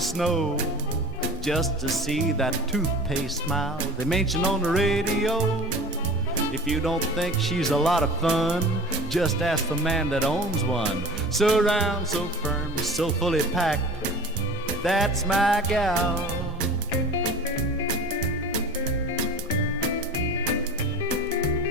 just to see that toothpaste smile they mention on the radio. If you don't think she's a lot of fun, just ask the man that owns one. So round, so firm, so fully packed, that's my gal.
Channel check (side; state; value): both; normal; correlation 0.38